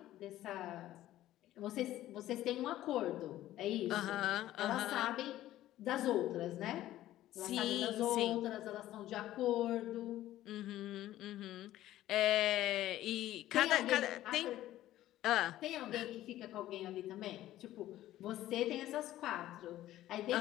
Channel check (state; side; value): quieter; right; 14.1 dB